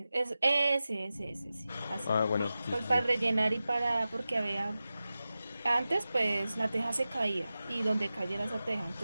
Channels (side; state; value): both; inverted; correlation -0.94